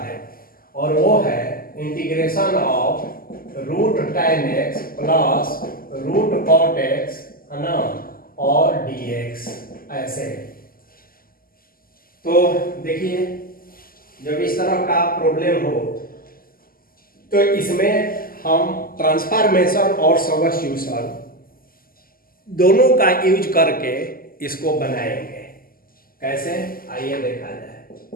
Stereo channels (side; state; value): right; late; 0.42 ms